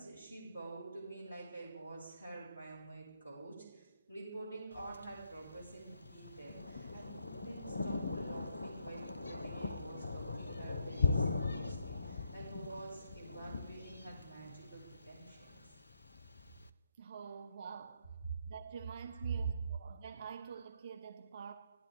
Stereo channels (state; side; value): inverted; both; correlation -0.76